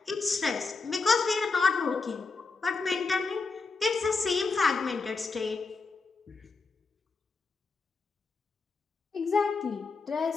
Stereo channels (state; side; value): quieter; right; 4.3 dB